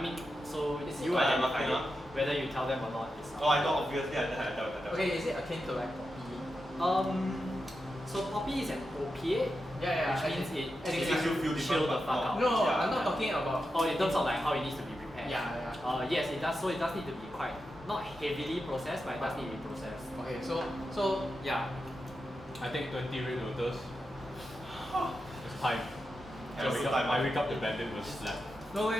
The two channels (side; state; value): both; normal; correlation 0.89